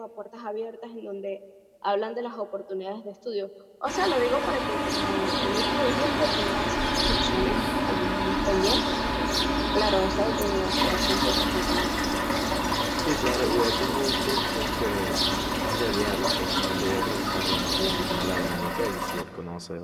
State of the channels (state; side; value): identical; both; correlation 1.00